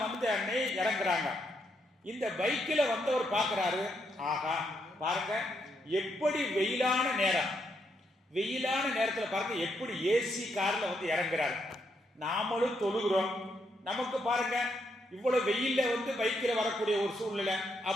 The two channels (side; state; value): both; normal; correlation 0.78